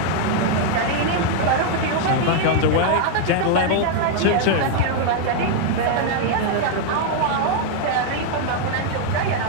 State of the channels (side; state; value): both; different; correlation 0.00